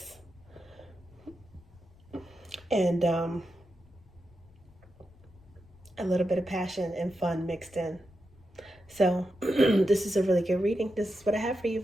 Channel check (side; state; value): left; noise; rumble, 26 dB below the sound